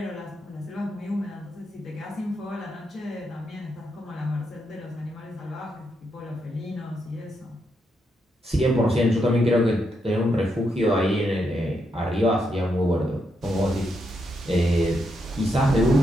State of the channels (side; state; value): both; normal; correlation 0.81